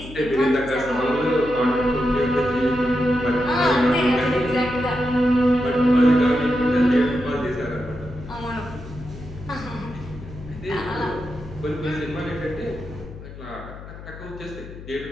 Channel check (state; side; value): noise; left; hum, 14 dB below the sound